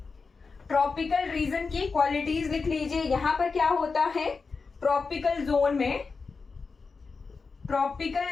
ट्रॉपिकल रीजन की क्वालिटीज लिख लीजिए। यहां पर क्या होता है? ट्रॉपिकल जोन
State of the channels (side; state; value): right; quieter; 4.6 dB